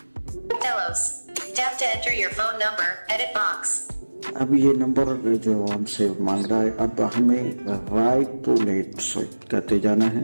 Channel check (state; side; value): inverted; both; correlation -1.00